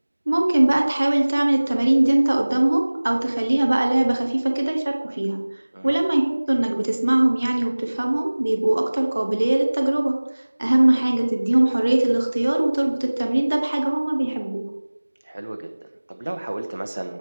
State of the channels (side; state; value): both; inverted; correlation -1.00